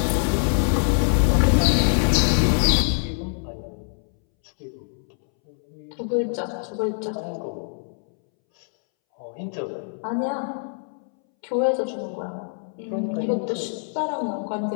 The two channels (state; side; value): silent; right; 62 dB below the other